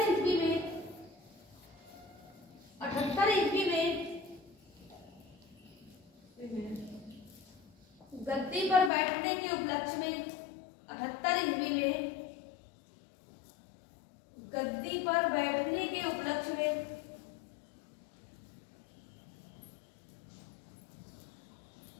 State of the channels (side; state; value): right; drops out; at 8.9 s